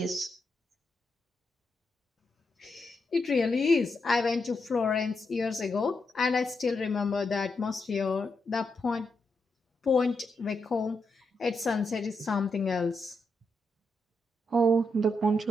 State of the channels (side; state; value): both; normal; correlation 0.84